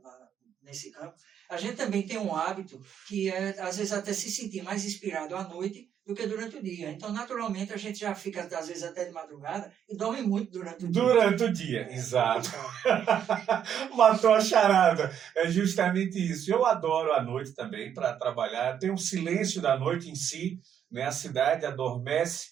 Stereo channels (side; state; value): left; quieter; 9.0 dB